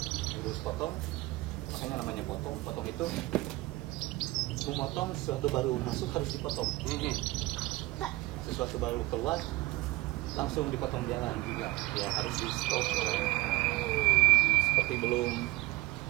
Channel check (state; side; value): quieter; left; 19.9 dB